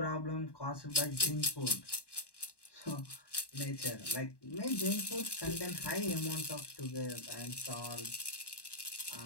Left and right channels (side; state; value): right; late; 1.1 ms